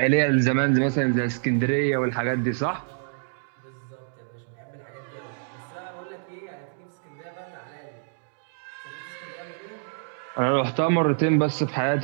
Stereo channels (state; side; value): silent; left; digital silence